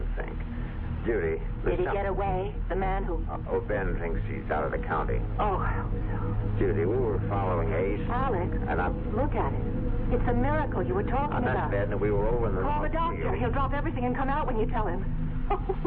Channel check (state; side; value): identical; both; correlation 1.00